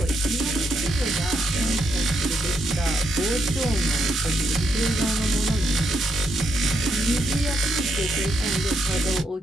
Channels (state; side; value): normal; both; correlation 0.78